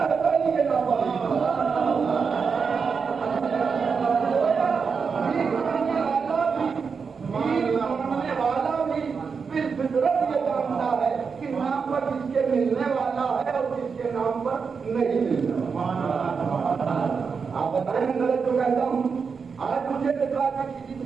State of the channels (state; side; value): quieter; left; 5.6 dB